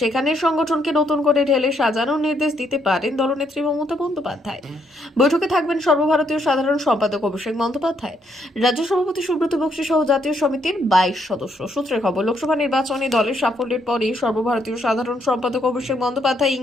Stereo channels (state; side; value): normal; both; correlation 0.73